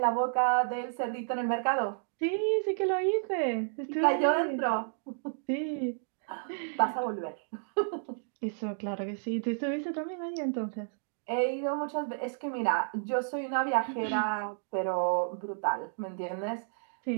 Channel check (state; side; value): silent; left; digital silence